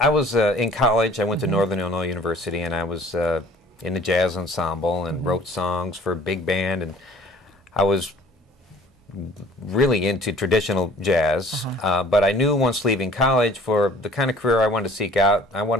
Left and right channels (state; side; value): normal; both; correlation 0.52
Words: was in college. I went to Northern Illinois University, and I was in the jazz ensemble and wrote songs for a big band, and I was really into traditional jazz, but I knew once leaving college, for the kind of career I wanted to seek out, I